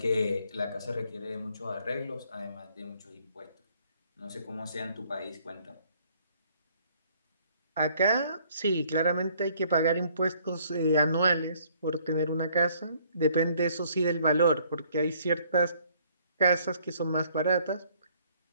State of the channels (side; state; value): both; inverted; correlation -0.63